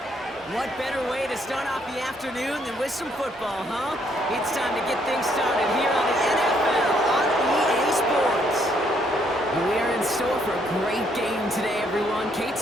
What better way to start off the afternoon than with some football, huh? It's time to get things started here on the NFL on EA Sports. We're in store for a great game today, everyone. Kate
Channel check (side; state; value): both; normal; correlation 0.70